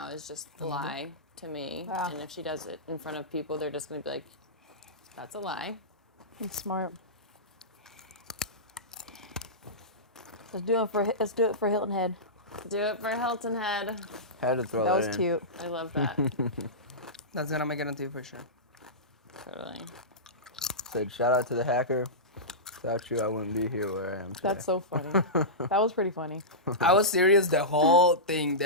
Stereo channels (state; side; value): normal; both; correlation -0.16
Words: is just lie to me. Yeah. And if she does it in front of people, they're just going to be like, that's a lie. That's smart. Let's do it for Hilton Head. Do it for Hilton Head. Had to throw That that, was in. cute. I love that. That's gonna make it on TV for sure. Totally. Said shout out to the hacker. Without you, I wouldn't be here where I am today. That's so funny. That was pretty funny. I was serious the whole thing.